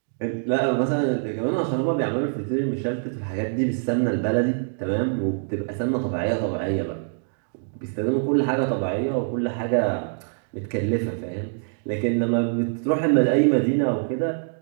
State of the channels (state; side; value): silent; left; digital silence